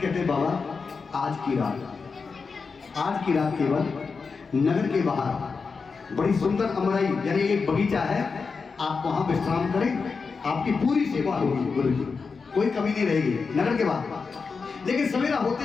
कहते बाबा आज की रात केवल नगर के बाहर बड़ी सुंदर अमराई यानी एक बगीचा है, आप वहां विश्राम करें, आपकी पूरी सेवा होगी गुरु जी, कोई कमी नहीं रहेगी नगर के बाहर। लेकिन सवेरा होते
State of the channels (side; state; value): right; quieter; 4.9 dB